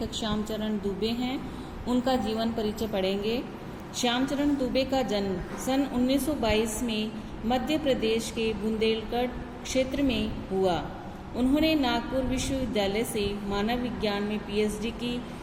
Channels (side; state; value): both; identical; correlation 1.00